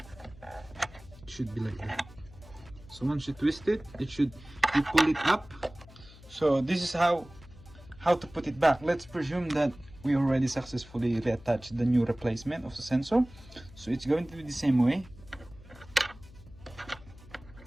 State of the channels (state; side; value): noise; left; hum, 21 dB below the sound